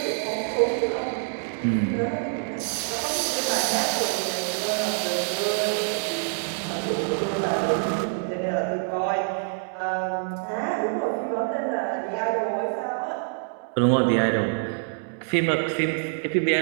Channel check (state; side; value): silent; left; 61 dB below the other